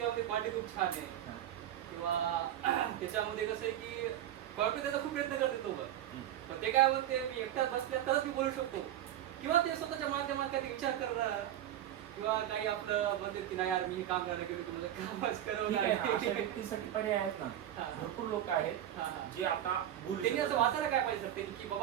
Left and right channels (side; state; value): left; quieter; 11.7 dB